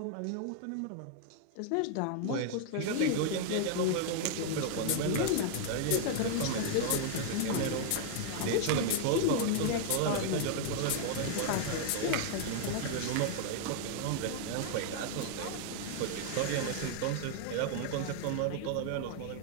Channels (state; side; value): different; both; correlation 0.00